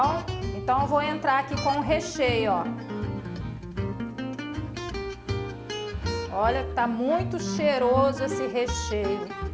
Então eu vou entrar aqui com o recheio, ó. Olha, tá muito cheiroso esse recheio.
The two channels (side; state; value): both; identical; correlation 1.00